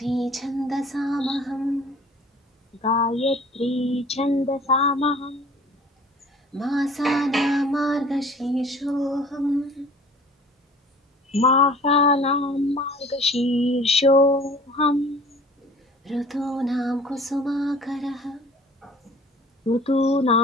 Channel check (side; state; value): both; normal; correlation 0.48